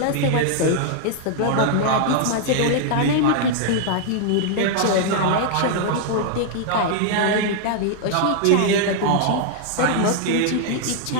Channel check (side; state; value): both; different; correlation -0.01